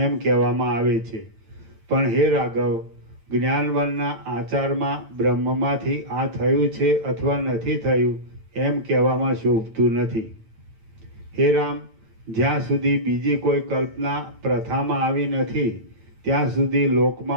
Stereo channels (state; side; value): late; left; 9.0 ms